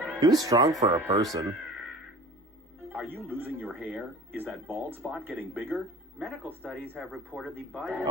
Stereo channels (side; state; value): both; normal; correlation 0.41